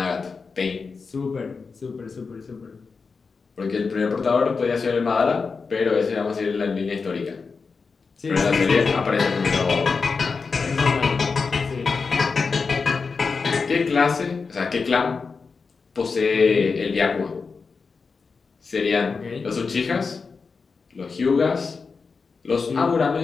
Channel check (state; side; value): quieter; right; 4.8 dB